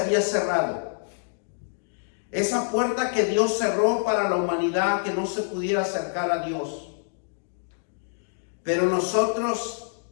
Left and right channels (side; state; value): right; silent; digital silence